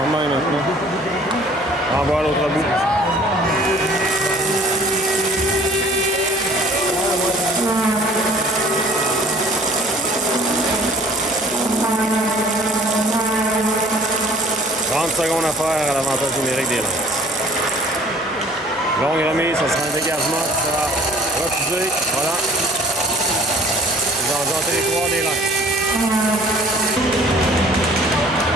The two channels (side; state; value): both; normal; correlation 0.52